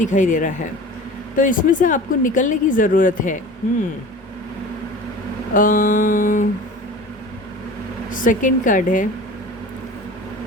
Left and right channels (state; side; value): normal; both; correlation 0.39